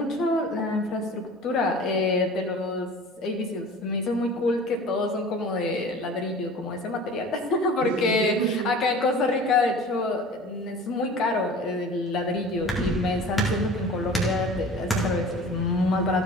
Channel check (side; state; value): both; normal; correlation 0.41